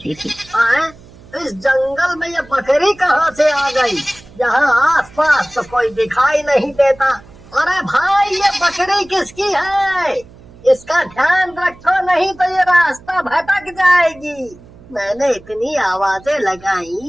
थी। इस जंगल में ये बकरी कहाँ से आ गई? यहाँ आसपास तो कोई दिखाई नहीं देता। अरे भाई, ये बकरी किसकी है? इसका ध्यान रखो, नहीं तो ये रास्ता भटक जाएगी। मैंने इतनी आवाजें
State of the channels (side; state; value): right; noise; hum, 23 dB below the sound